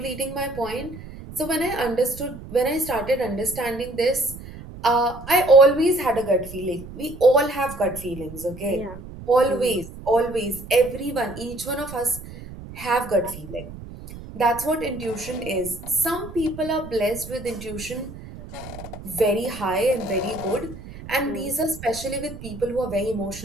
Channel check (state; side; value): noise; right; rumble, 14 dB below the sound